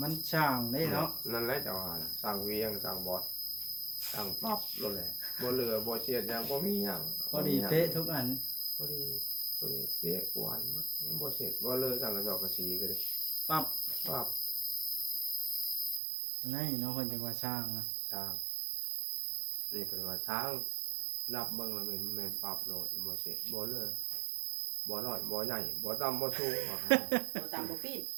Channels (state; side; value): drops out; left; at 16.0 s